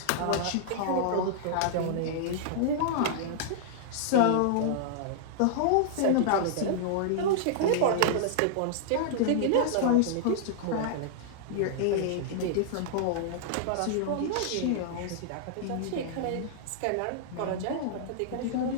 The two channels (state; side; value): different; both; correlation -0.01